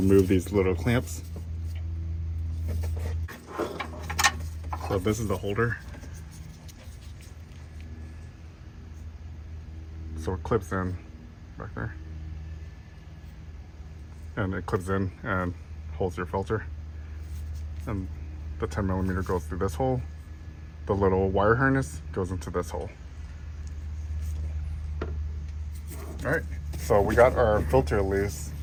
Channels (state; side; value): identical; both; correlation 1.00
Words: these little clamps. So this is the holder. So it clips in back there. And it clips in and holds your filter. And the 10mm goes through this hole. The little wire harness goes into this hole. All right, so we got our filter loose.